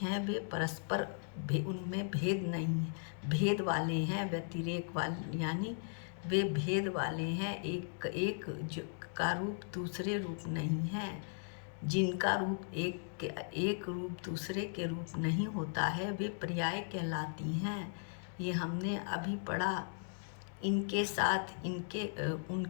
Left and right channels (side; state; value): right; silent; digital silence